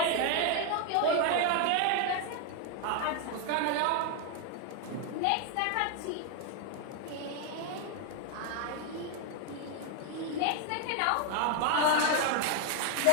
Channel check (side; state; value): both; different; correlation 0.01